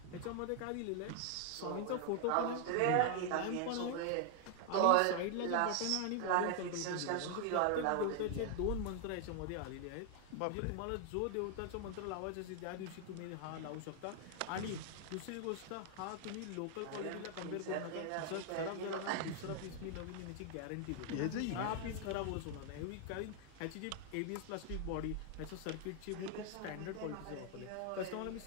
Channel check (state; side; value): different; both; correlation 0.00